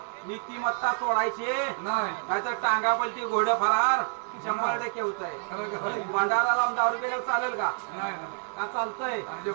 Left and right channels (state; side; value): silent; left; 59 dB below the other